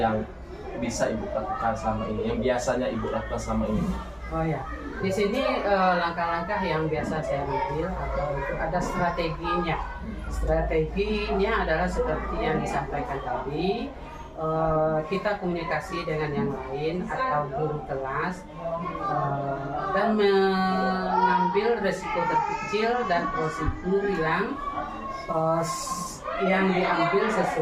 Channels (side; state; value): both; identical; correlation 1.00